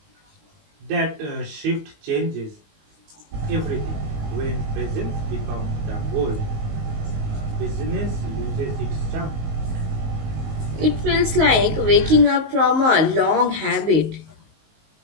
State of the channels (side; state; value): left; late; 19 ms